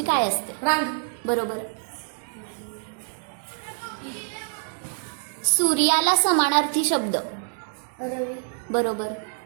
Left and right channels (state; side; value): silent; left; digital silence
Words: काय असते? रांग. बरोबर. सूर्याला समानार्थी शब्द? रवी. बरोबर.